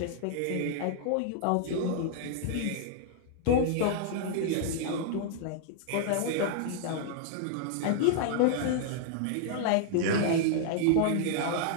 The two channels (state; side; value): different; both; correlation -0.01